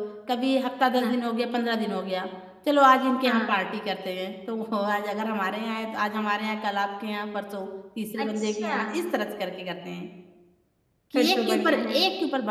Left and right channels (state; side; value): identical; both; correlation 1.00